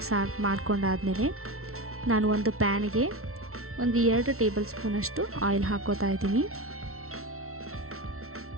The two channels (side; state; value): left; late; 0.63 ms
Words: ಮಾಡ್ಕೊಂಡಾದಮೇಲೆ ನಾನು ಒಂದು ಪ್ಯಾನ್ಗೆ ಒಂದು 2 ಟೇಬಲ್ ಸ್ಪೂನಷ್ಟು ಆಯಿಲ್ ಹಾಕೋತಾ ಇದ್ದೀನಿ.